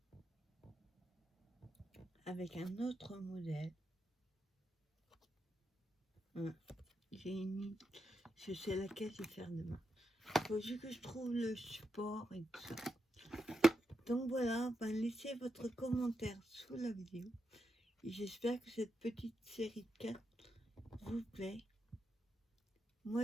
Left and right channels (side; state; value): both; normal; correlation 0.84